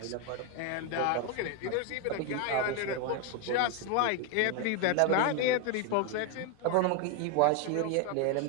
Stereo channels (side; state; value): both; different; correlation 0.01